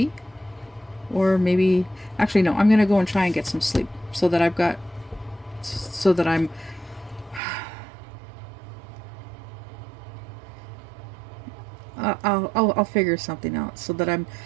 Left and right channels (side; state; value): left; drops out; at 7.4 s